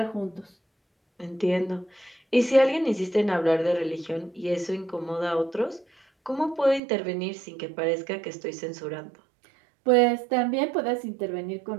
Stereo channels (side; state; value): left; drops out; at 6.8 s